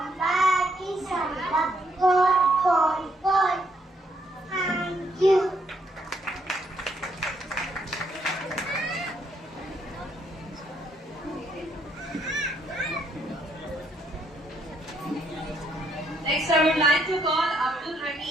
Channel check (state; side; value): normal; both; correlation 0.73